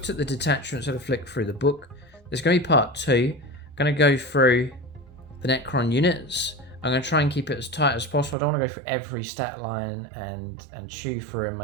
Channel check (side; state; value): left; drops out; at 8.3 s